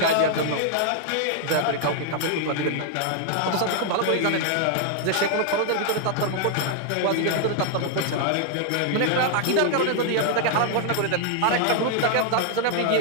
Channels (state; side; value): different; both; correlation 0.00